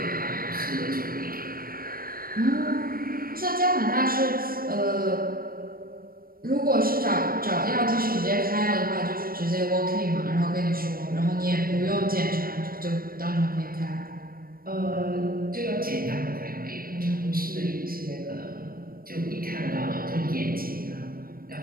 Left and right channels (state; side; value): late; left; 0.42 ms